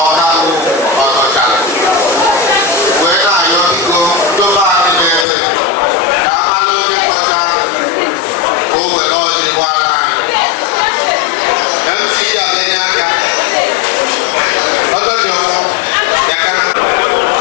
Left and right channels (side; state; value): right; drops out; at 5.2 s